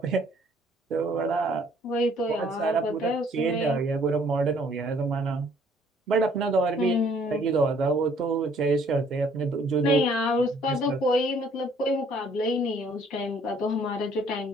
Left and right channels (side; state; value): both; normal; correlation 0.61